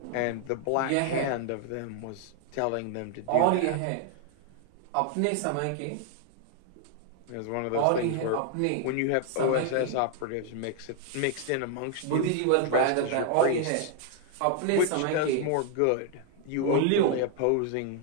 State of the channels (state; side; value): different; both; correlation 0.00